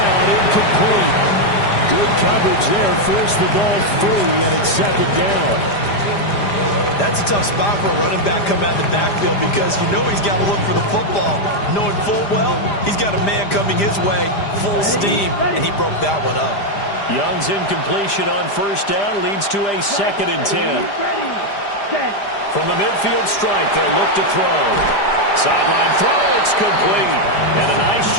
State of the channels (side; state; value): right; late; 5.0 ms